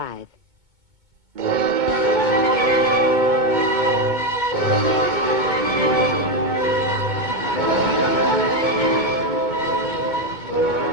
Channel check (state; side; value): late; left; 2.2 ms